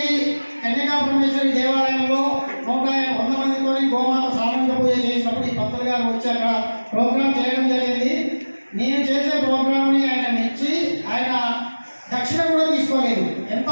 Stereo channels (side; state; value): both; inverted; correlation -1.00